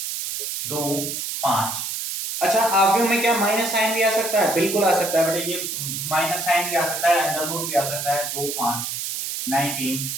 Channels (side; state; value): right; noise; hiss, 4 dB below the sound